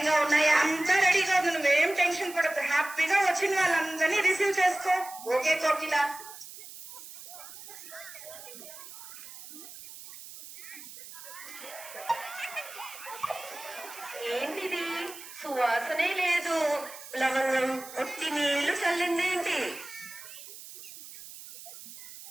ఉన్నాయా? అంతా రెడీగా ఉంది, నువ్వేం టెన్షన్ పడద్దు. హ్యాపీగా వచ్చిన వాళ్ళందరినీ రిసీవ్ చేసుకో. ఓకే కోకిల. ఏంటిది? సువాసనే లేదు. లవంగం ఒట్టి నీళ్లు చల్లిందేంటి?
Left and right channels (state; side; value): noise; right; hiss, 15 dB below the sound